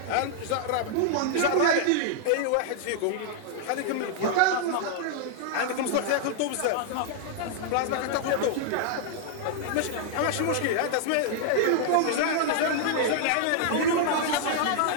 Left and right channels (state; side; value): different; both; correlation -0.01